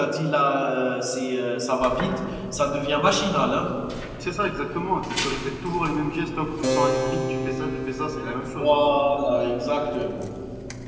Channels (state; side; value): identical; both; correlation 1.00